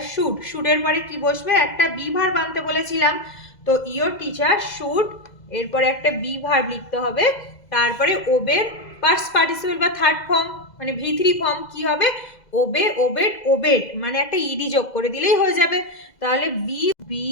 should, শুডের পরে কি বসবে একটা বি ভার্ব আনতে বলেছিলাম, তো ইয়োর টিচার শুড এরপরে একটা বি ভার্ব লিখতে হবে, তারপরে ওবের পাস্ট পার্টিসিপল বা থার্ড ফর্ম মানে V3 ফর্ম কি হবে ওবে, ওবেড, ওবেড, মানে একটা ইডি যোগ করে দিলেই হয়ে যাবে, তাহলে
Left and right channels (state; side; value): late; right; 2.0 ms